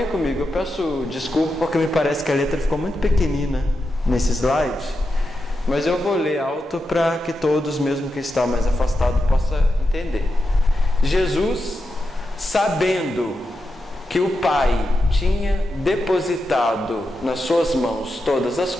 comigo. Eu peço desculpa porque me parece que a letra ficou muito pequenina nesse slide, mas eu vou ler alto para que todos, mesmo quem está mais afastado, possa entender. Jesus, sabendo que o Pai tinha depositado nas suas mãos todas as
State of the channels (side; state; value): both; normal; correlation 0.88